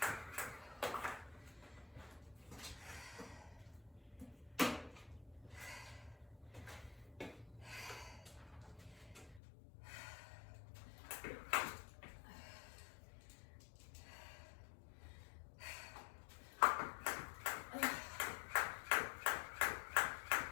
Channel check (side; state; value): right; drops out; at 9.4 s